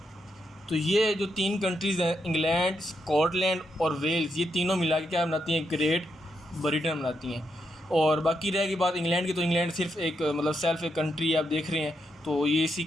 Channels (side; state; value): both; normal; correlation 0.81